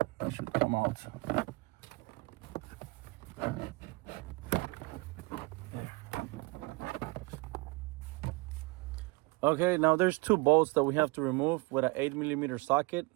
come out. Okay, now there's 2 bolts that we have to remove with an 8mm socket.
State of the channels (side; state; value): left; quieter; 24.7 dB